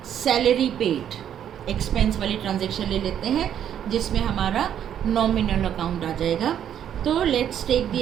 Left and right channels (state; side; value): quieter; left; 9.7 dB